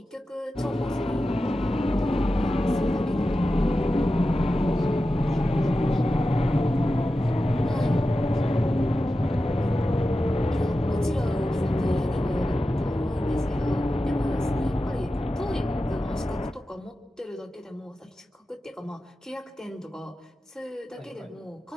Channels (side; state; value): both; normal; correlation 0.92